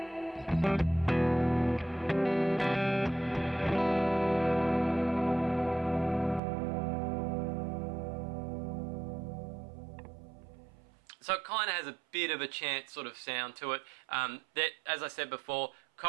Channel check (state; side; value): drops out; left; at 6.4 s